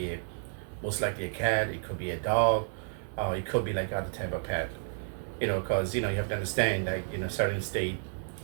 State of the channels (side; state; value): left; silent; 57 dB below the other